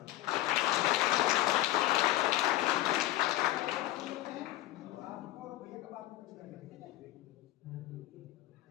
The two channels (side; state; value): right; quieter; 15.7 dB